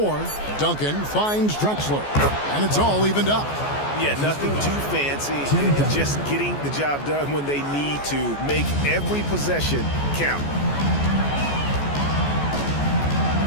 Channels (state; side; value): late; right; 14 ms